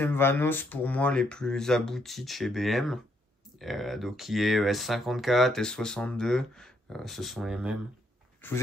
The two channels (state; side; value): normal; both; correlation 0.73